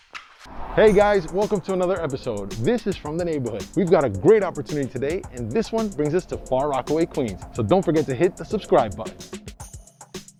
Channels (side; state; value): both; identical; correlation 1.00